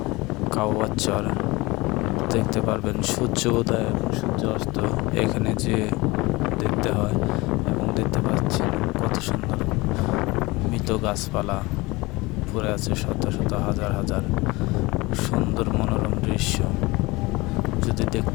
কাওয়ার চর দেখতে পারবেন সূর্য উদয় এবং সূর্য অস্ত এখানে যে দেখতে হয়। এবং দেখতে পাচ্ছেন কত সুন্দর মৃত গাছপালা পড়ে আছে, শত শত হাজার হাজার সুন্দর মনোরম দৃশ্য। যদি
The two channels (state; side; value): quieter; right; 22.6 dB